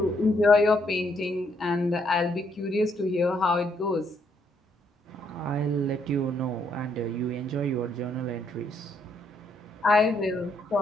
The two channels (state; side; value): normal; both; correlation 0.72